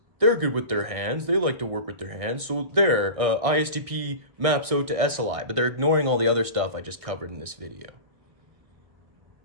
they're good with their hands. They like to work with their hands. So there, ISTP maps out to SLI. But they're ignoring all the other stuff I just covered in this video.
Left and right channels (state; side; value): late; left; 1.6 ms